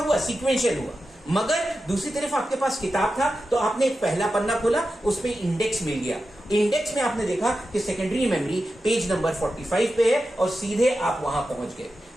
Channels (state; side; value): normal; both; correlation 0.91